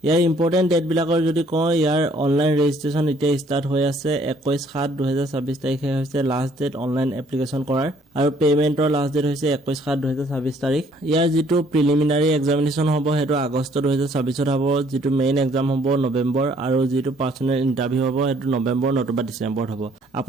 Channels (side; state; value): both; normal; correlation 0.62